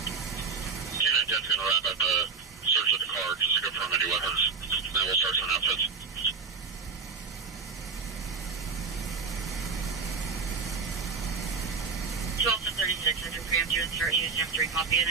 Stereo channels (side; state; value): left; quieter; 5.1 dB